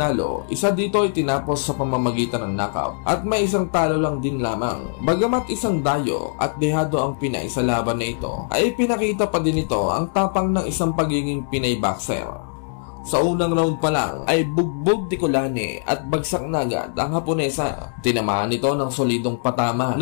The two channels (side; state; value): right; silent; digital silence